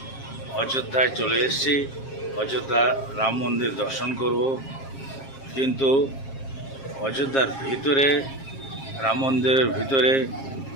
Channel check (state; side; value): late; right; 7.4 ms